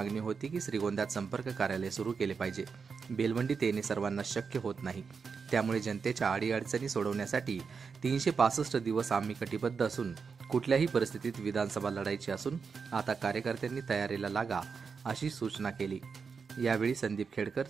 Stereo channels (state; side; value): quieter; left; 5.5 dB